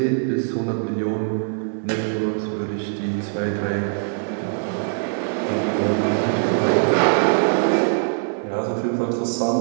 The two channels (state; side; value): silent; left; 64 dB below the other